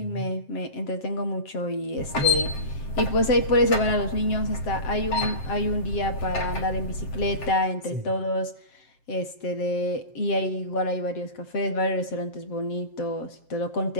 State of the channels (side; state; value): right; late; 7.6 ms